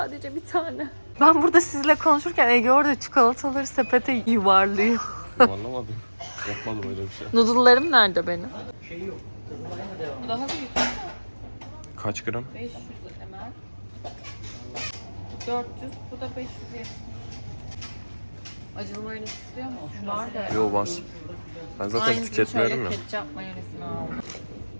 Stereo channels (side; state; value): both; inverted; correlation -1.00